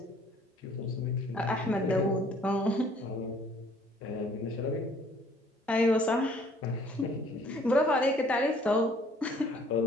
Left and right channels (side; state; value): both; normal; correlation 0.58